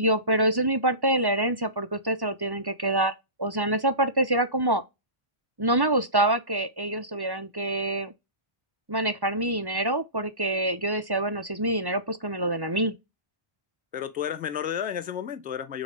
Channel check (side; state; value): left; late; 1.1 ms